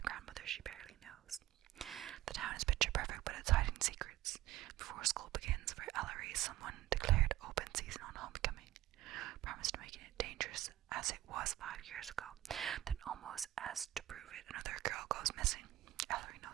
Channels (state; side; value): quieter; left; 15.4 dB